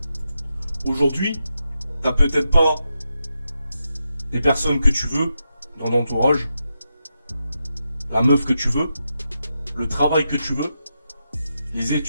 Aujourd'hui, t'as peut-être pas des personnes que tu veux dans ton entourage, la meuf que tu veux, le travail que tu veux, les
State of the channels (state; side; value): inverted; both; correlation -0.86